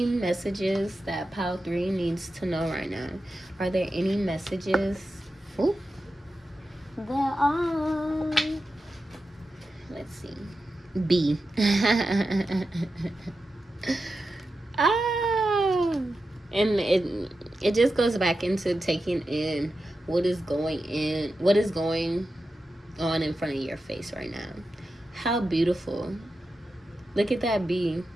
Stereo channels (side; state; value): both; normal; correlation 0.91